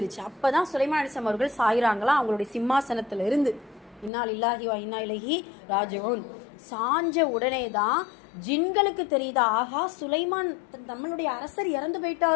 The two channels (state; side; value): drops out; right; at 4.1 s